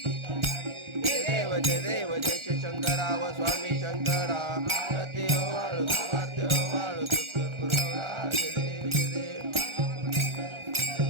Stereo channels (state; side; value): late; left; 1.4 ms